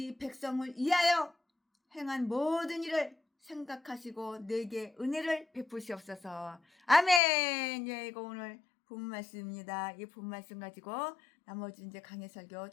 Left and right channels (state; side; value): drops out; right; at 7.2 s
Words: 백성을 위하여 행한 모든 일을 생각하시고 내게 은혜를 베푸시옵소서. 아멘. 예, 이거 오늘 본 말씀입니다. 이 본 말씀 가지고 나머지 이제 강의 설교